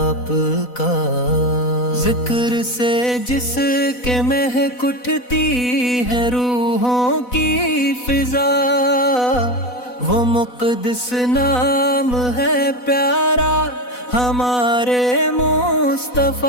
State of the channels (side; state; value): right; late; 4.0 ms